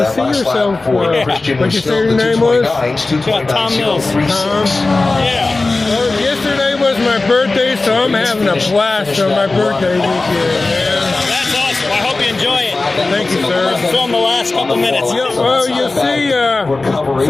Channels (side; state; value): right; quieter; 3.4 dB